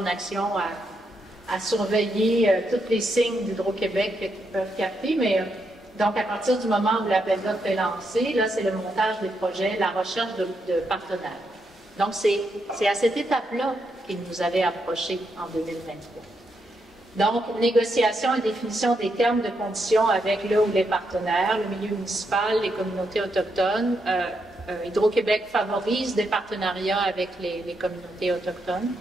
action à surveiller tous les signes d'Hydro-Québec qu'ils peuvent capter. Mais donc, à partir du moment où l'appel d'offres est lancé, là, c'est le montage des projets, la recherche de partenaires. Donc, c'est à cette étape-là qu'ils nous avaient approchés en 2023. Donc, négociation et définition des termes de conditions avec le ou les partenaires, le milieu municipal, les communautés autochtones. Hydro-Québec favorise des partenariats avec les communautés autochtones.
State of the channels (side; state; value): both; normal; correlation 0.81